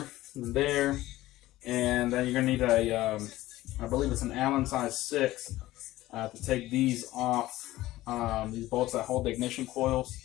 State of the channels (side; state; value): right; quieter; 16.6 dB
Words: and there. And then you're going to need a, I believe it's an Allen size 6 to take these off, these bolts that hold the ignition coils.